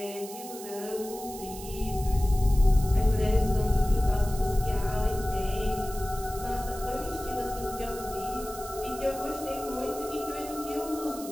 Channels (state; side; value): noise; right; hiss, 13 dB below the sound